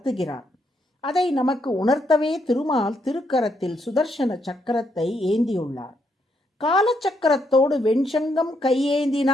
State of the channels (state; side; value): normal; both; correlation 0.76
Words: அதை நமக்கு உணர்த்தவே திருமால் திருக்கரத்தில் சுதர்சன சக்கரத்தை ஏந்தியுள்ளார். காலச்சக்கரத்தோடு வெண்சங்கம்